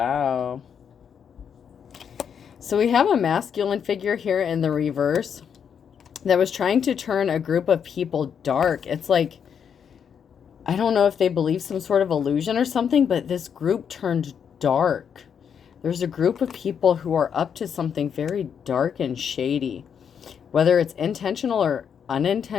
So we have a masculine figure here in the reverse that was trying to turn a group of people dark. It's like, I don't know if they believe some sort of illusion or something, but this group turned dark. There's a group of people who are up to something very dark and shady, whether it's intentional or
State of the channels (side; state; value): right; quieter; 7.6 dB